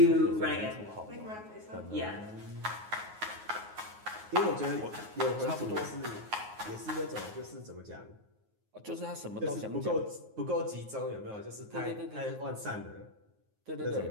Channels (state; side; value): late; left; 9.5 ms